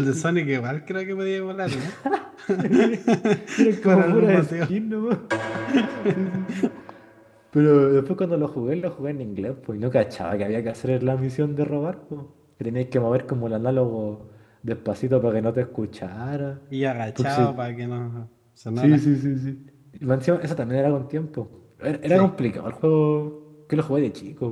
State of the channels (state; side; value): identical; both; correlation 1.00